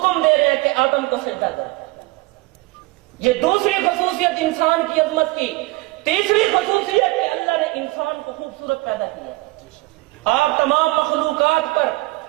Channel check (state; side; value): quieter; left; 21.2 dB